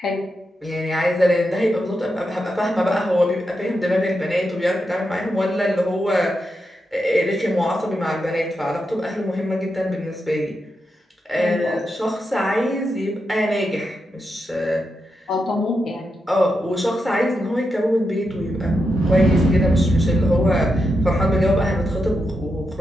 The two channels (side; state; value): both; normal; correlation 0.86